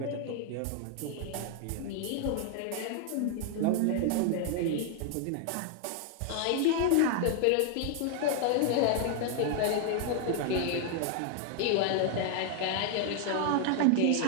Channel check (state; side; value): different; both; correlation 0.00